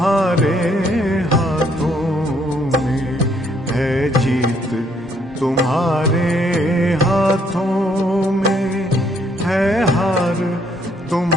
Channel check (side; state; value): both; normal; correlation 0.69